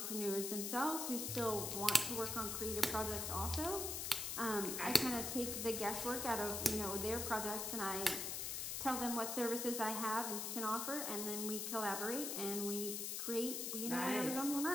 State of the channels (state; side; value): noise; left; hiss, 2 dB below the sound